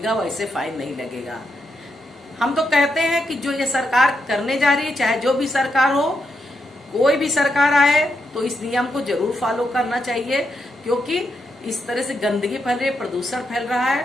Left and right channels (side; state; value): both; normal; correlation 0.82